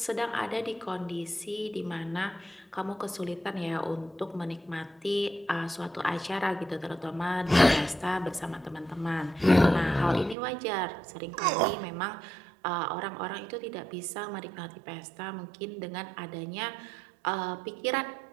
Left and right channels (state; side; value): drops out; left; at 10.4 s